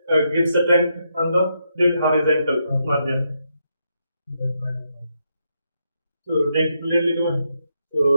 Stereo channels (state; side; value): inverted; both; correlation -0.80